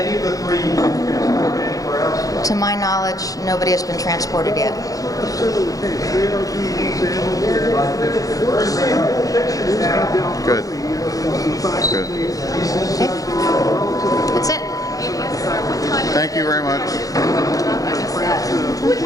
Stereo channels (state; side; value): late; right; 0.17 ms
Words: of the three been transported anywhere else? To my knowledge, nobody has been transported yet. Good. Good. That's it. Thank you very much.